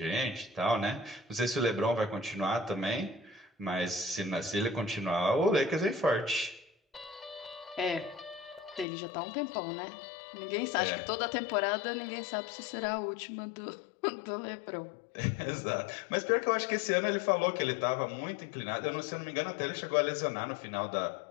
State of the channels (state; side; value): drops out; right; at 8.8 s